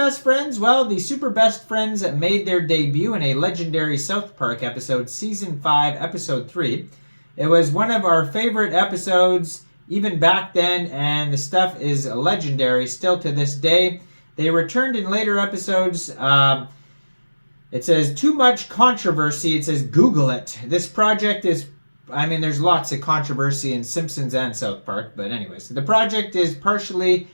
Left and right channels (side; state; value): both; inverted; correlation -1.00